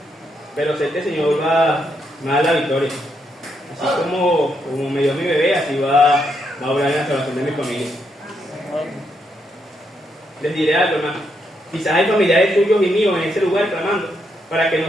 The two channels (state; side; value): normal; both; correlation 0.78